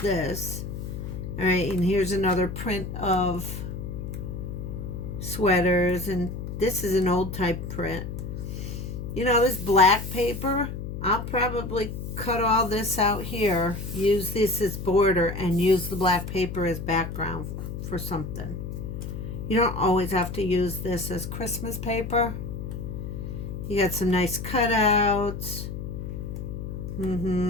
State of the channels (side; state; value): left; noise; hum, 7 dB below the sound